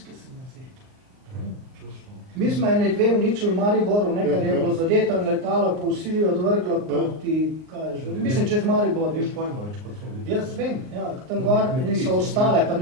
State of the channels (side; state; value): left; late; 39 ms